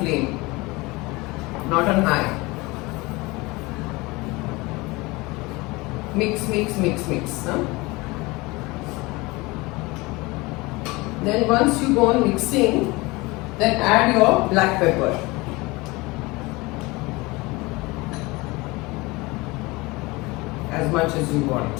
not on high. Mix, mix, mix, mix. Huh? Then once you go on mixing, then add your black pepper. As much as you want.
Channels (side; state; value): right; quieter; 23.3 dB